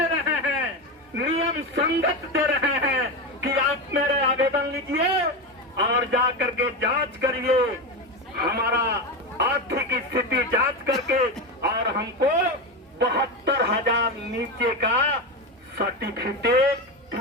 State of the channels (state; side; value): normal; both; correlation 0.17